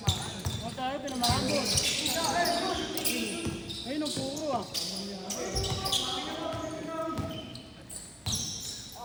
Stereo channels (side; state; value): both; identical; correlation 1.00